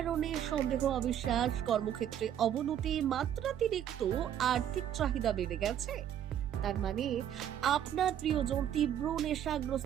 সন্দেহ, অবিশ্বাস, কর্মক্ষেত্রে অবনতি, মাত্রাতিরিক্ত আর্থিক চাহিদা বেড়ে গেছে, তার মানে আপনার প্রিয়জন তীব্র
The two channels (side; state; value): left; quieter; 10.2 dB